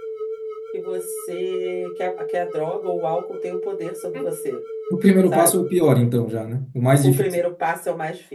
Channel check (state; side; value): identical; both; correlation 1.00